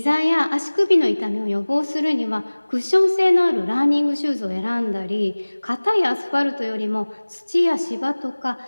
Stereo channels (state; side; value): inverted; both; correlation -1.00